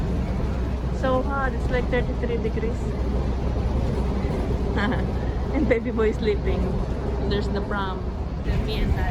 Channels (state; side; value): identical; both; correlation 1.00